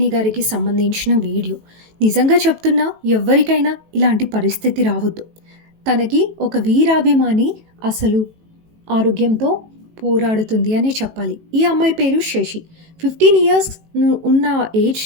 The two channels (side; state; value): left; late; 18 ms